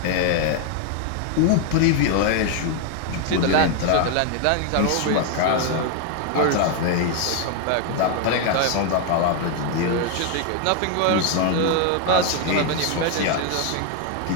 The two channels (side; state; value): both; different; correlation 0.00